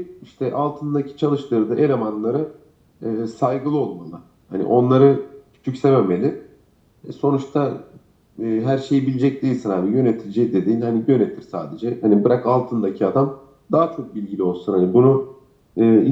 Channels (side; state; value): both; identical; correlation 1.00